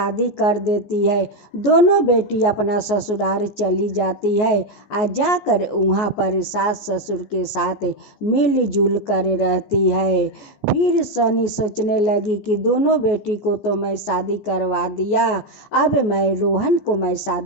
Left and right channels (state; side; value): late; right; 14 ms